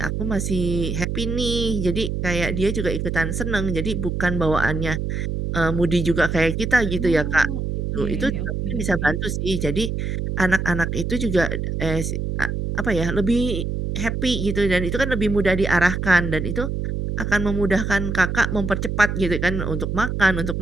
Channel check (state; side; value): noise; right; hum, 2 dB below the sound